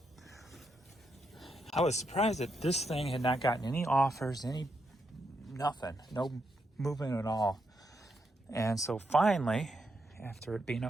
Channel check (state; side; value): normal; both; correlation 0.81